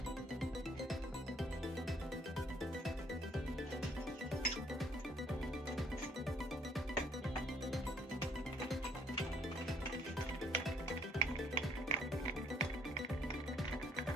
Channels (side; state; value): both; normal; correlation 0.64